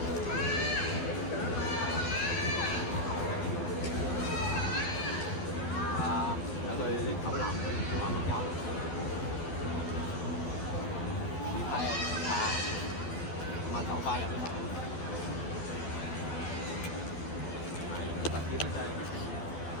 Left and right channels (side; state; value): right; late; 12 ms